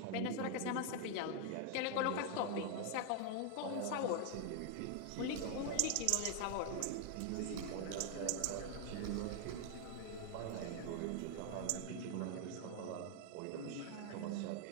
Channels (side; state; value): both; different; correlation 0.00